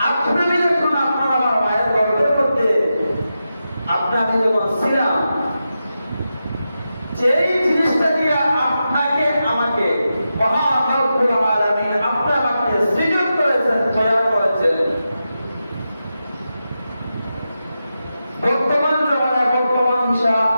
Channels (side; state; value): both; inverted; correlation -0.89